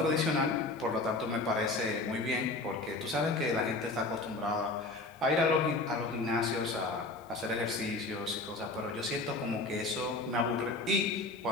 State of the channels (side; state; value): right; quieter; 3.1 dB